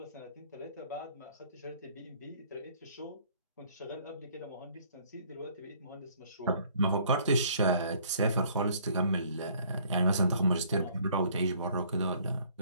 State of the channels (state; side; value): inverted; both; correlation -0.59